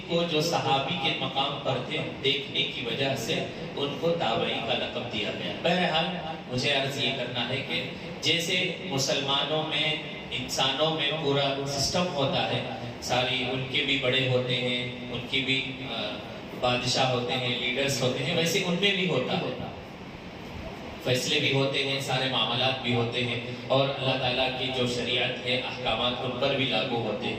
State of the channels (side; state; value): both; identical; correlation 1.00